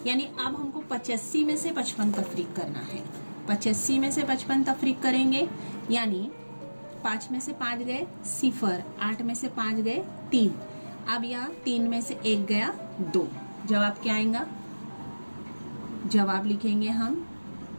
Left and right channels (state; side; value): inverted; both; correlation -1.00